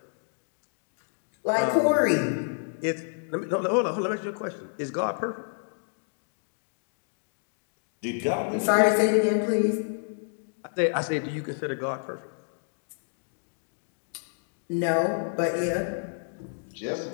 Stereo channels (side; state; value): right; silent; digital silence